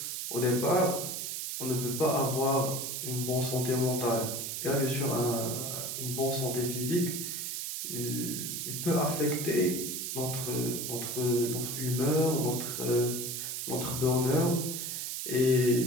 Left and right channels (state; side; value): noise; right; hiss, 4 dB below the sound